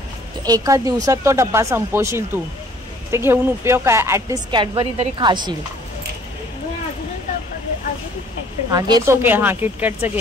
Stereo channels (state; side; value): normal; both; correlation 0.56